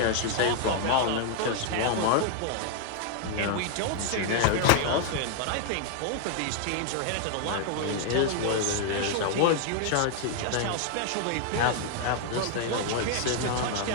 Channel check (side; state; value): both; different; correlation 0.00